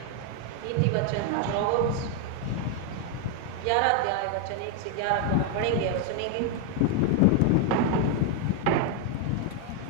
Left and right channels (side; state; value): both; different; correlation 0.01